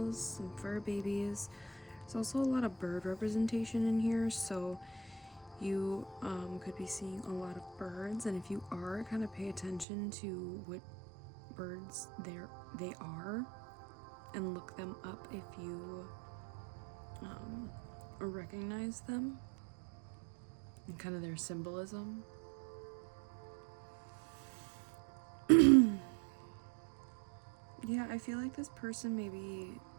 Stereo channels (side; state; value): left; drops out; at 9.9 s